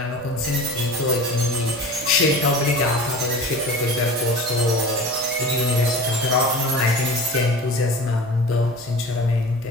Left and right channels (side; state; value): both; normal; correlation 0.36